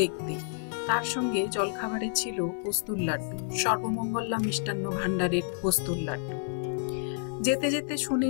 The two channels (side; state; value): right; silent; 56 dB below the other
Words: তার সঙ্গে জলখাবারে ছিল পোস্তুর লাড্ডু, সর্বমঙ্গলা মিষ্টান্ন ভাণ্ডারের পোস্তুর লাড্ডু। যেতে যেতে শুনে